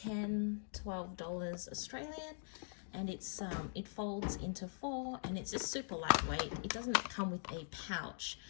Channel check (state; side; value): silent; right; digital silence